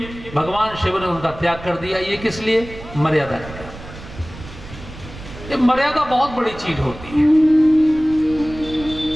भगवान शिव ने उनका त्याग कर दिया। ये किस लिए? मर्यादा के लिए। ये मर्यादा बहुत बड़ी चीज होती है।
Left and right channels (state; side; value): noise; right; rumble, 15 dB below the sound